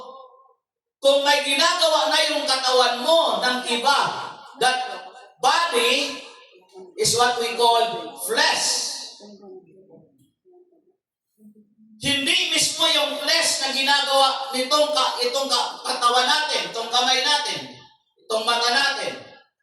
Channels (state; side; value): identical; both; correlation 1.00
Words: kung may ginagawa na yung katawan mo ng iba, that body is what we call flesh. Hindi mismo yung flesh na ginagawa itong katawan natin, itong kamay natin, itong mata natin.